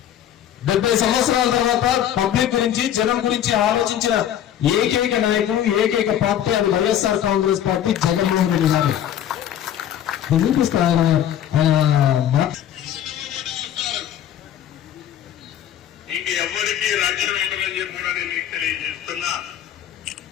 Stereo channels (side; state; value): right; quieter; 10.6 dB